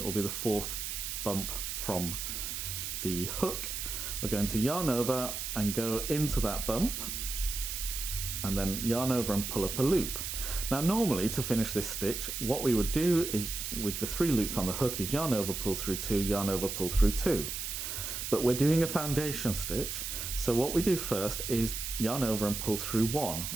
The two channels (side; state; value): right; noise; hiss, 4 dB below the sound